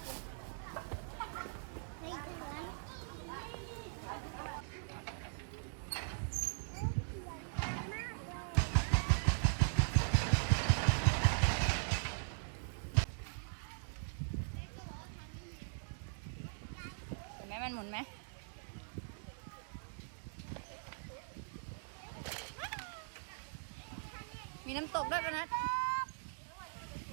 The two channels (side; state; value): left; silent; digital silence